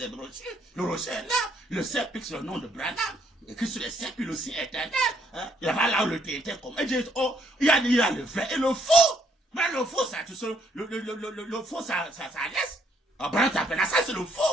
rochers. Le rocher est là. Le sceptre, c'est le nom de Branham. Écrit sur le sceptre, il aussi éternel. Hein? Il y a là où le tété comme. Et dit, oh, il y a le vrai et le faux. Mais le faux, ça, tu sais, le faux, ça laisse. Branham t'appelle ça, c'est le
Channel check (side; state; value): both; normal; correlation 0.69